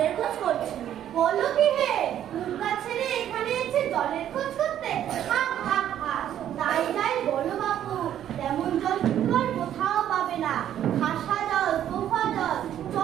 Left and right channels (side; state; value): left; quieter; 10.8 dB